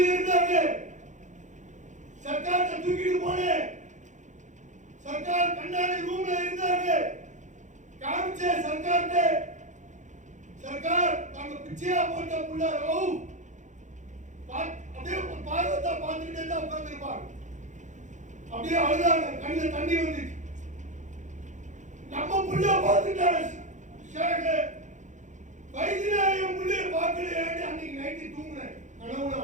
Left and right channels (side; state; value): left; late; 0.35 ms